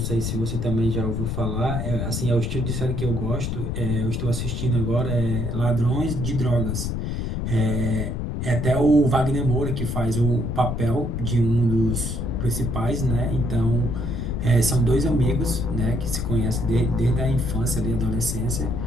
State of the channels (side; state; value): left; noise; rumble, 3 dB below the sound